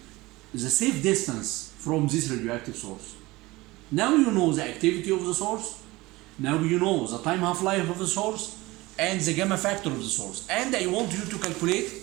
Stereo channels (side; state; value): left; quieter; 20.6 dB